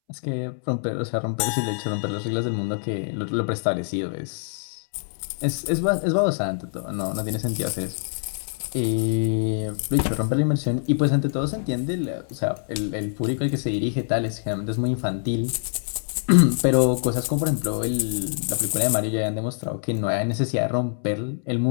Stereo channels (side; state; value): right; silent; 62 dB below the other